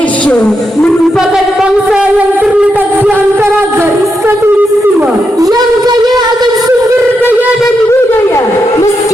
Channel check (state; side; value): normal; both; correlation 0.84